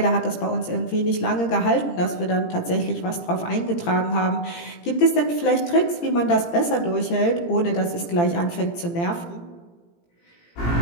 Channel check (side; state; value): right; late; 17 ms